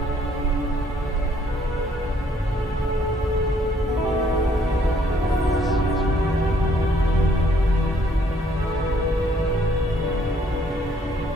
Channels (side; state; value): both; normal; correlation 0.65